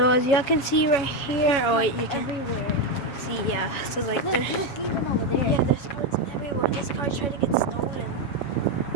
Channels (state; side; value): late; right; 7.3 ms